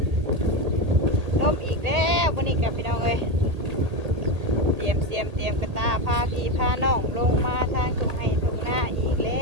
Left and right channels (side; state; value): left; late; 1.8 ms